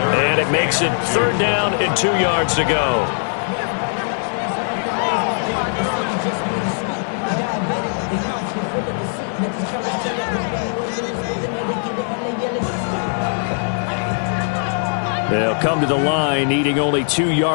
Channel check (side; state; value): right; silent; 66 dB below the other